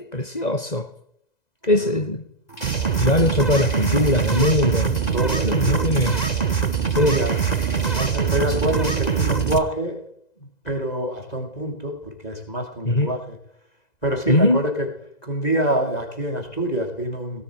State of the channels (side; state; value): right; late; 2.0 ms